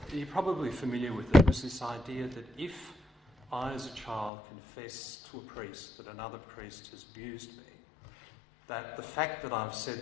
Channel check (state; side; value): drops out; right; at 4.3 s